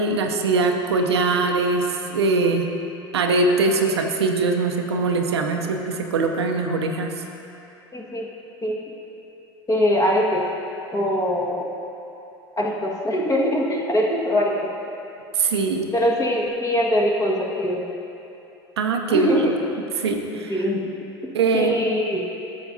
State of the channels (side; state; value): both; normal; correlation 0.25